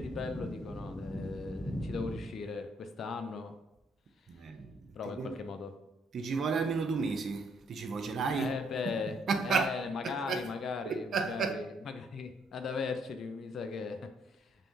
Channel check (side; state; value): both; normal; correlation 0.69